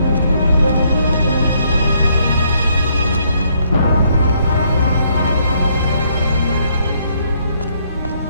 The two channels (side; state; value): both; inverted; correlation -0.70